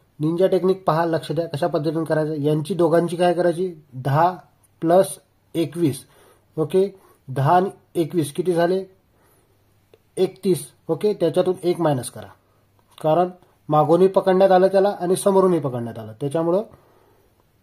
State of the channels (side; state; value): both; identical; correlation 1.00